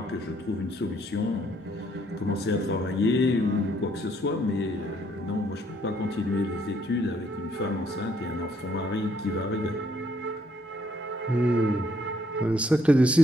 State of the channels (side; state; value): both; normal; correlation 0.68